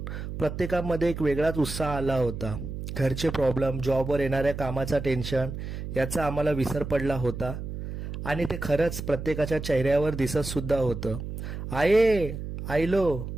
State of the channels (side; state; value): right; noise; hum, 7 dB below the sound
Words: प्रत्येकामध्ये एक वेगळाच उत्साह आला होता. घरचे प्रॉब्लेम, जॉबवर येणाऱ्या कामाचा टेन्शन याचा आम्हाला विसर पडला होता आणि ते खरंच प्रत्येकाच्या चेहऱ्यावर दिसत सुद्धा होतं. आये आयलो